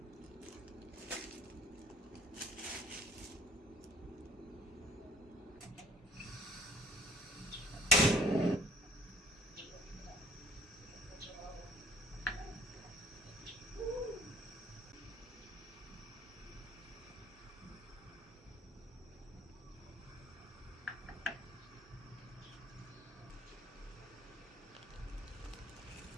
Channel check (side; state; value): both; normal; correlation 0.53